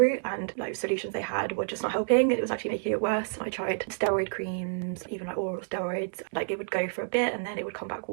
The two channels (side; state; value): left; silent; digital silence